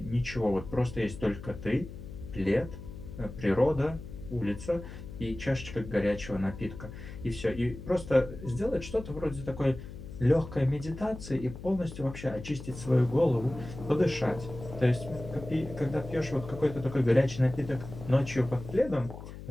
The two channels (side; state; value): left; noise; hum, 12 dB below the sound